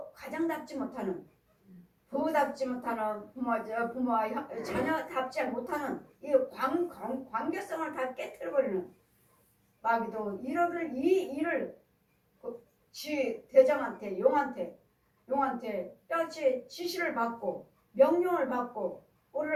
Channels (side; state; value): both; identical; correlation 1.00